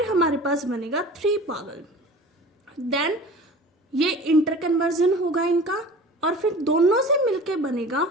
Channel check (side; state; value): both; normal; correlation 0.40